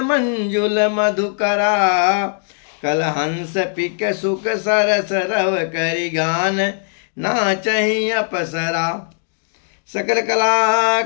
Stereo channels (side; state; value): right; silent; digital silence